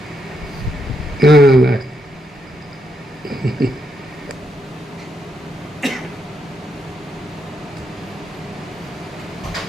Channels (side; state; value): both; normal; correlation 0.79